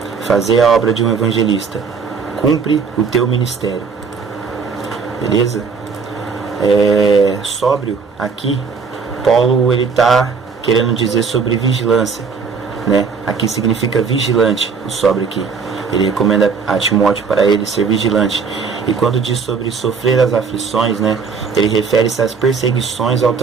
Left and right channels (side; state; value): left; quieter; 5.4 dB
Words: Fazei a obra de um evangelista. Cumpre o teu ministério. Beleza? Sóbrio, aqui, Paulo ele está querendo dizer sobre vigilância, né? Aqui significa vigilante, o sóbrio aqui. Ele recomenda a Timóteo para ele ser vigilante. E quando diz sobre sofrer as aflições, né, ele refere-se às perseguições ao